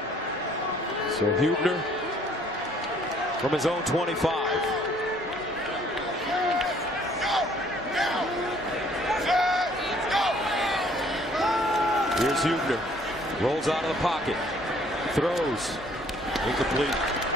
So Huebner from his own 25. Here's Huebner. Rolls out of the pocket. Throws. Incomplete.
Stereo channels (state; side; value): normal; both; correlation 0.60